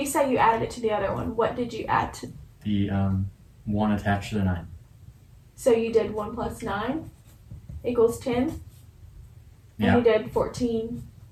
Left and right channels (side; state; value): both; identical; correlation 1.00